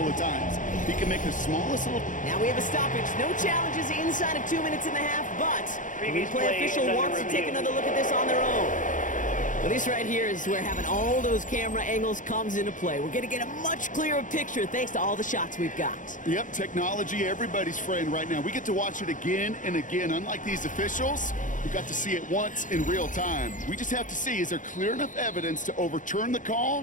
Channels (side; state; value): right; late; 0.37 ms